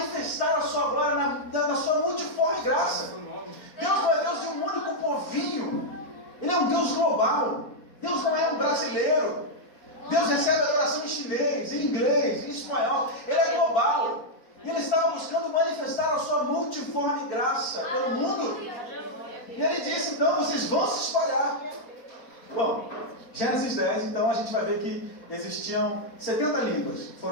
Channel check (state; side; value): late; right; 4.2 ms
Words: a sua glória na sua multiforme graça. Deus não é Deus de um único povinho. Ele é um Deus global. Deus não é um brasileiro. Deus recebe adoração em chinês, em inglês, em espanhol. Ele é global. E ele estava buscando manifestar a sua multiforme graça pelo mundo. E ele disse, então, vocês vão se espalhar. Bom, Gênesis 10, então, a gente vai ver que existiam 70 línguas que